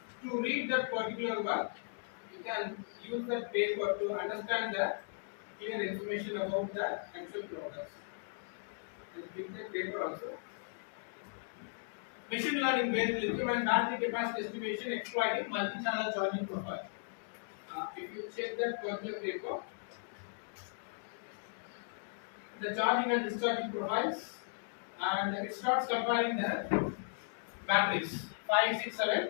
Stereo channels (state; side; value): silent; right; digital silence